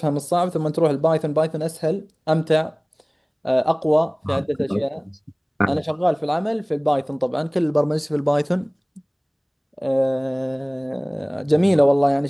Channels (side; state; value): both; identical; correlation 1.00